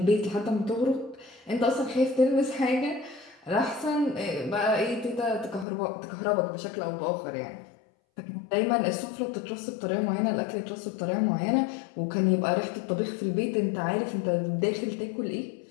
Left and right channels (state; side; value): drops out; right; at 5.7 s